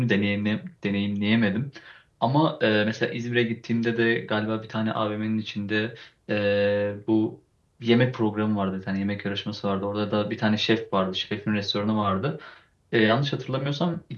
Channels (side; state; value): both; identical; correlation 1.00